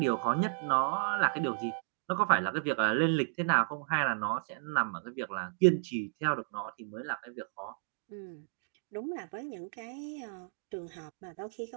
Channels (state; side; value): silent; left; digital silence